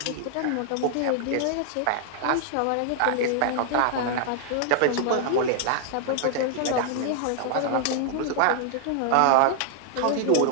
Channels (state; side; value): different; both; correlation -0.01